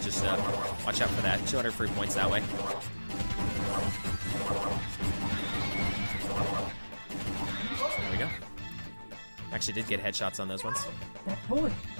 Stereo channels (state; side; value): inverted; both; correlation -1.00